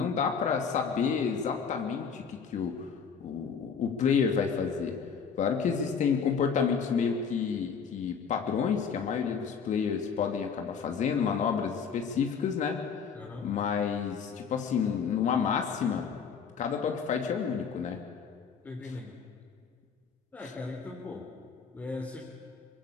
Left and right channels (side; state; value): right; quieter; 6.3 dB